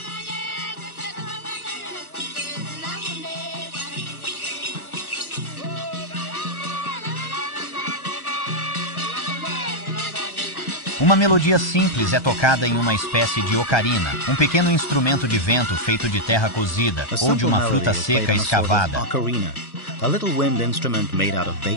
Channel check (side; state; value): right; late; 1.3 ms